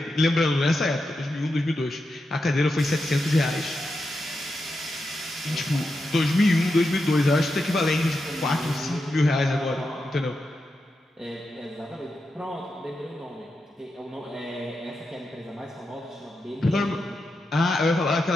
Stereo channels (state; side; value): normal; both; correlation 0.88